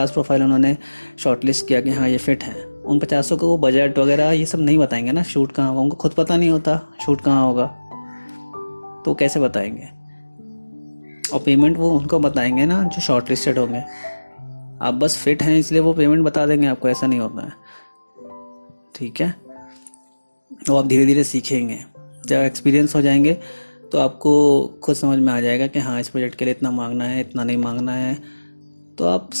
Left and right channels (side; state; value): both; inverted; correlation -1.00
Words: प्रोफाइल उन्होंने शॉर्ट लिस्ट किया कि हाँ ये फिट हैं, उन 50 को वो बजट वगैरह ये सब नहीं बताएंगे ना, शूट कहाँ होगा, उनको खुद पता नहीं होता शूट कहाँ होगा, तो कैसे बताएंगे। और पेमेंट वो उनको बताएंगे ना जो शॉर्ट लिस्टेड होंगे, आप बस फिट हैं इसलिए वो पेमेंट बता देंगे आपको, ऐसा नहीं होता है। ठीक है, तो आप धीरे धीरे सीखेंगे, जब एक्सपीरियंस हो जाएंगे तो आपको खुद समझ में आ जाएगा कि हाँ इस प्रोजेक्ट के लिए इतना मांगना है, इतना नहीं मांगना है। तो आप